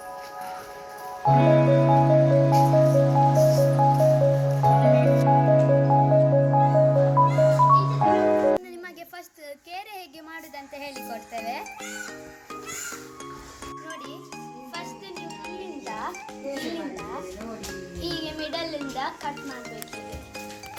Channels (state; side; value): identical; both; correlation 1.00